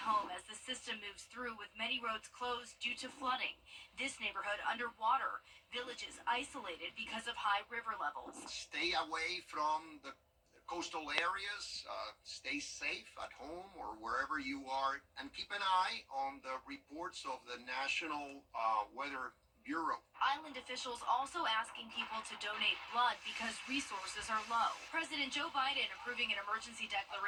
home as the system moves through, with many roads closed due to flooding. This neighborhood underwater, villages isolated because of high river levels. Stay away from the coastal areas, stay safe at home or wherever you are, and keep an eye on the reports of the National Weather Bureau. Island officials also asking people to donate blood because resources are low. President Joe Biden approving an emergency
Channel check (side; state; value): both; identical; correlation 1.00